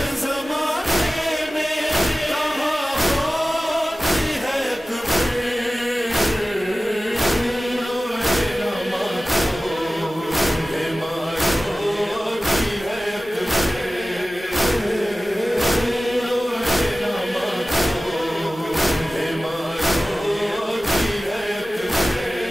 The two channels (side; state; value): both; normal; correlation 0.97